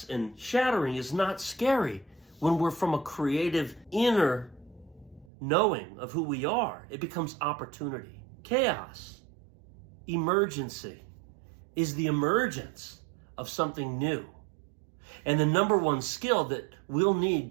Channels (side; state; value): left; drops out; at 5.2 s